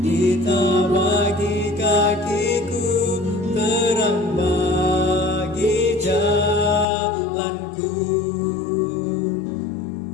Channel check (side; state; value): right; drops out; at 6.9 s